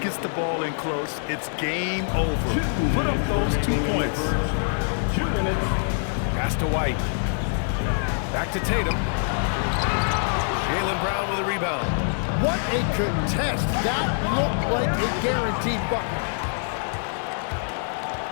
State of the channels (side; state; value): right; silent; digital silence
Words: the ball in close, it's game over. Put up those 2 points. 2 minutes. Pass to White. Back to Tatum. Jaylen Brown with a rebound. What a contest. That looked like a guaranteed bucket.